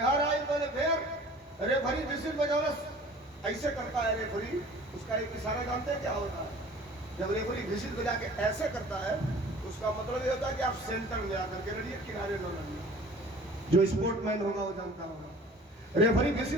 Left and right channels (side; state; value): both; normal; correlation 0.47